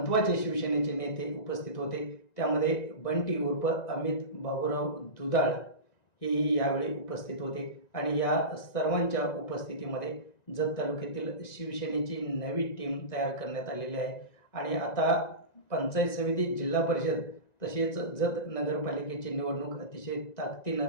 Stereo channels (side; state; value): right; late; 1.9 ms